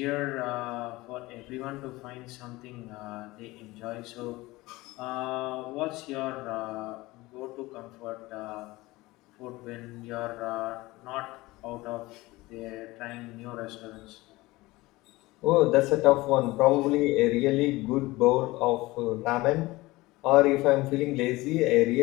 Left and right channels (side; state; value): right; quieter; 20.2 dB